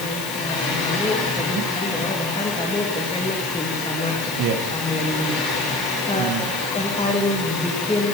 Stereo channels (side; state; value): left; noise; hiss, 10 dB below the sound